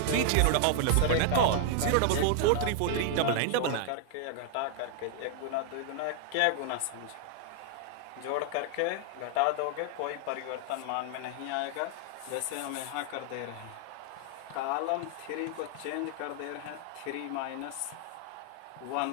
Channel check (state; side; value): different; both; correlation 0.00